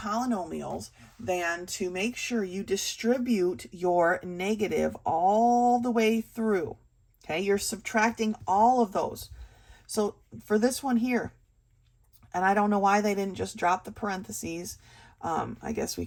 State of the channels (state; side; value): identical; both; correlation 1.00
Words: than to make sure you distribute your negative all the way through. Okay, you're subtracting all of those. So for this one here, and I don't know why they didn't just drop the parentheses. I guess we